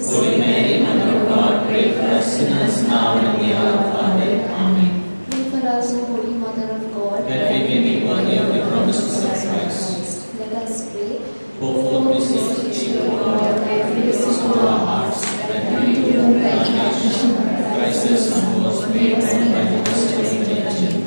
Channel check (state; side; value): inverted; both; correlation -1.00